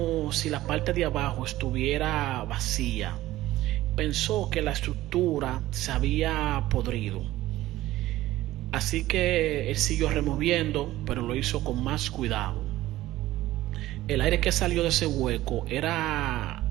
si la parte de abajo estuviera vacía. Pensó que la estructura se había podrido. Así que él siguió removiendo, pero lo hizo con más cuidado. El aire que salió de ese hueco era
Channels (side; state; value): left; quieter; 15.8 dB